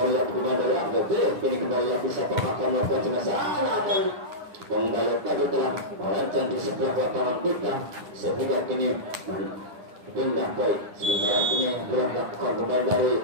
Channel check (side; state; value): left; late; 9.8 ms